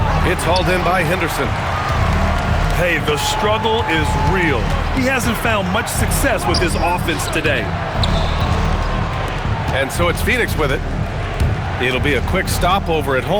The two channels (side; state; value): both; identical; correlation 1.00